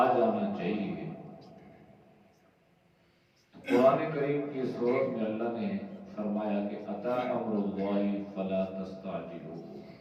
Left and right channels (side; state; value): both; identical; correlation 1.00